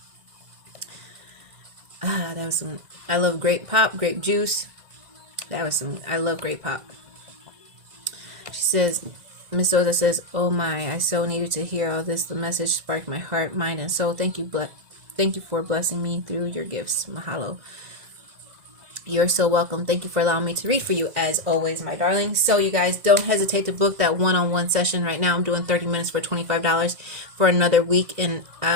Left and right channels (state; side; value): late; left; 2.0 ms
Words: That was some, I love grape pop, grape juice. That was some, I love grape pop. She says, Miss Souza says, oh my, I so needed to hear all this. The message sparked my heart, mind, and soul. Thank you for blessing me through your gifts. Mahalo. You're so welcome. Thank you for allowing me to read for you, as always, my darling. So you guys, don't hesitate to book that one-on-one session. Right now I'm doing 30 minutes for $25 for another week, and